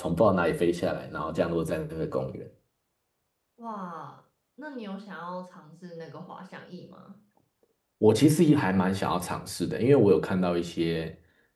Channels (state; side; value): identical; both; correlation 1.00